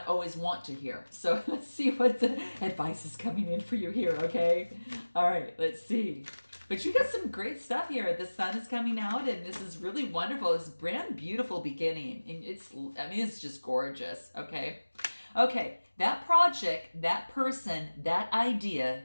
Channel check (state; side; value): inverted; both; correlation -1.00